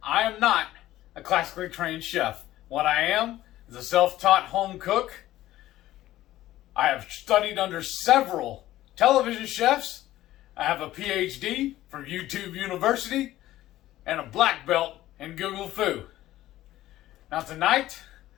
I am not a classically trained chef. What I am is a self-taught home cook. I have studied under several television chefs. I have a PhD from YouTube University and a black belt in Google Foo. Now tonight,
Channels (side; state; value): right; quieter; 14.9 dB